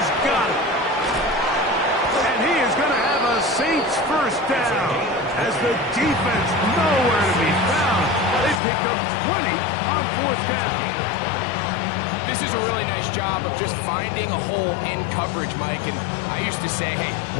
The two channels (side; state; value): right; drops out; at 8.6 s